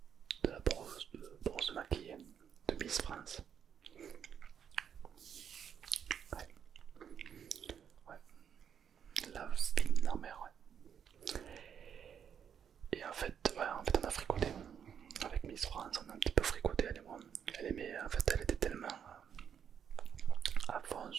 la brosse maquillée de Miss France. Ouais, ouais, la fine en mer, ouais. Et en fait, ouais, on a fricoté. Avec Miss France, on a un petit peu fricoté, elle et moi. Elle aimait, en fait, elle était tellement à fond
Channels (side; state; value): left; quieter; 8.1 dB